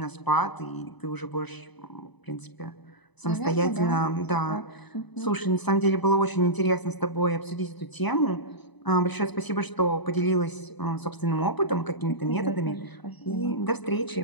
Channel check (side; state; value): right; late; 1.0 ms